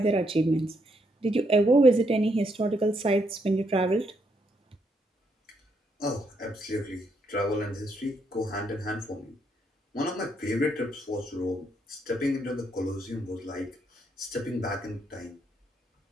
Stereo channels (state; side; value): normal; both; correlation 0.75